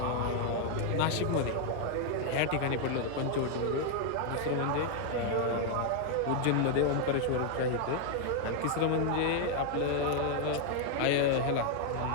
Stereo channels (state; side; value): different; both; correlation 0.00